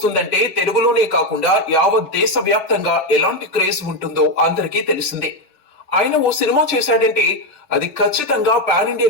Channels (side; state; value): both; normal; correlation 0.09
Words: తెలుగులోనే కాకుండా యావత్ దేశవ్యాప్తంగా ఎలాంటి క్రేజ్ ఉంటుందో అందరికీ తెలిసిందే. ఆయన ఓ సినిమా చేశాడంటే అది ఖచ్చితంగా పాన్